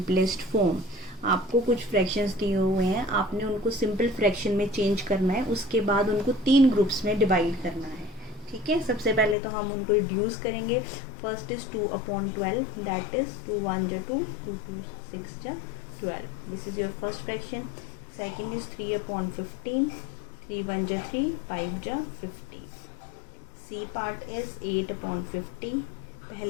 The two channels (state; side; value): drops out; right; at 9.3 s